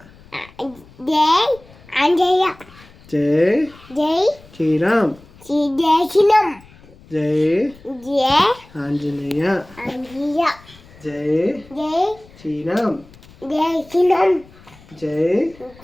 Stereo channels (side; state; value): left; noise; rumble, 24 dB below the sound